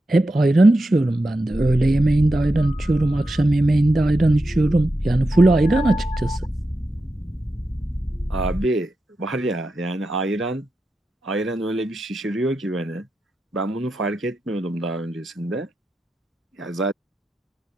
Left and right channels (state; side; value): normal; both; correlation 0.89